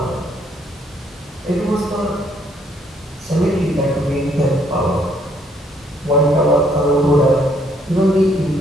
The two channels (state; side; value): normal; both; correlation 0.68